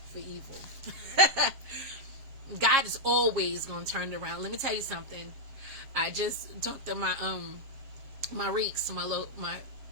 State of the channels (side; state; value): left; late; 7.3 ms